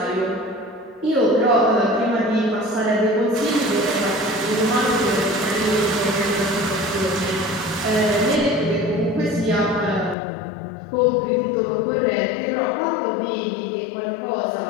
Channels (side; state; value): right; drops out; at 10.2 s